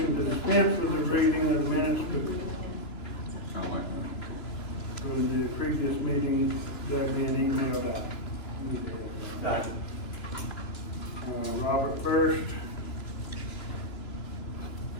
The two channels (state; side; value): late; right; 2.9 ms